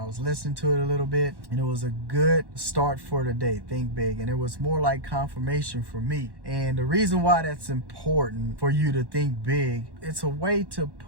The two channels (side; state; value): left; late; 1.1 ms